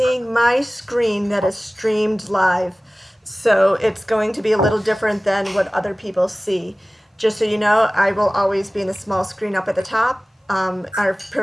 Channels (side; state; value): both; normal; correlation 0.98